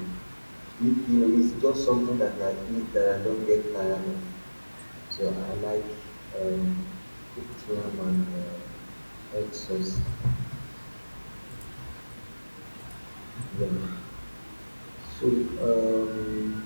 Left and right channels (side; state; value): both; inverted; correlation -1.00